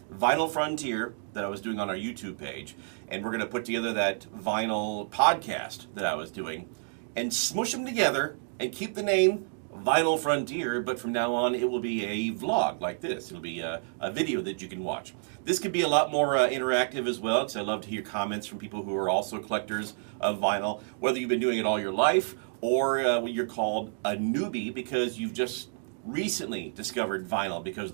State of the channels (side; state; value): left; silent; digital silence